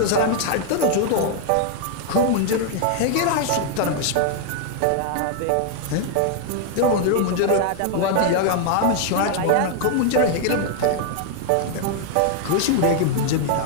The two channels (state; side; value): different; both; correlation 0.00